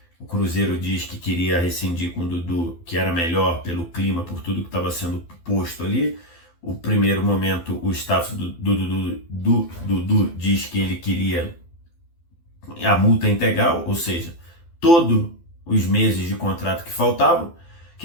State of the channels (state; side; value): late; right; 12 ms